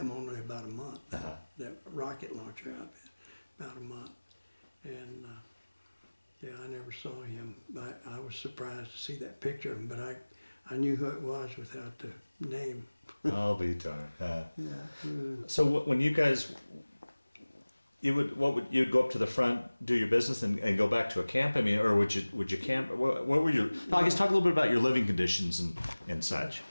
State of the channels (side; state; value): both; inverted; correlation -1.00